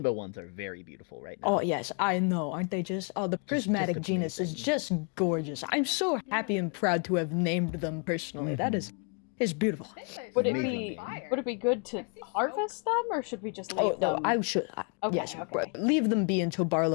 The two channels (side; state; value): right; quieter; 38.0 dB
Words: ones are very beautiful right now. Oh yes, I know, aren't they just? Oh, the prismatic genus is just gorgeous. I'm so happy and proud to have named them personally. That is beautiful. would it Amazing. be good to harvest them, or should we just leave Oh no, them? I should. Okay, yes, okay. leave them be until